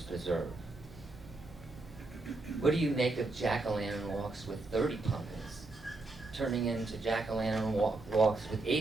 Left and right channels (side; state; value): left; quieter; 3.2 dB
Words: Preserve? What do you make of jack-o'-lantern walks with 30 pumpkins, turning into jack-o'-lantern walks with